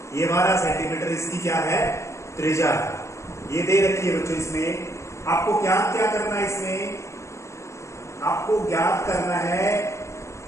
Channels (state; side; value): late; right; 0.14 ms